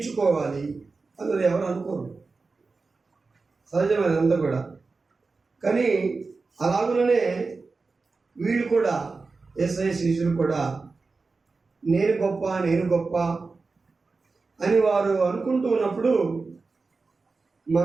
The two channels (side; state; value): left; quieter; 4.1 dB